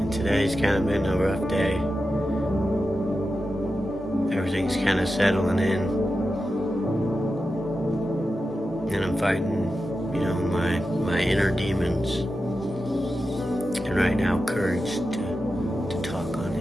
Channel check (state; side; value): normal; both; correlation 0.91